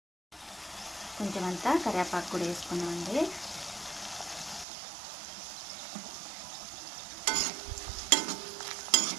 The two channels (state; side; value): drops out; left; at 4.7 s